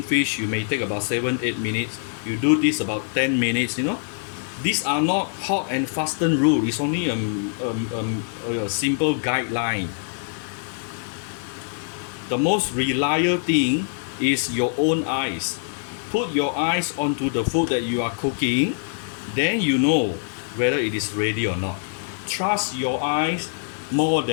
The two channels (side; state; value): right; silent; digital silence